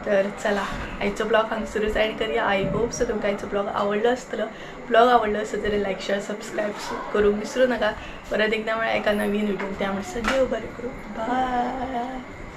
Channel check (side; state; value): both; identical; correlation 1.00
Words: तर चला आयचो ब्लॉग हांगसरूच एंड करूया आय होप सो तुमकां आयचो ब्लॉग आवडलो आसतलो ब्लॉग आवडलो आसत जाल्यार लायक शेअर सबस्क्राईब करूंक विसरू नका परत एकदा म्हळ्यार एका नवीन व्हिडिओ त्यामुळे सगळे बरें करूं बाय